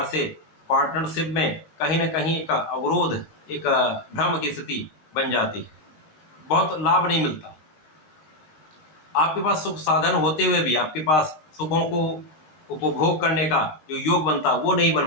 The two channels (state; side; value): late; right; 19 ms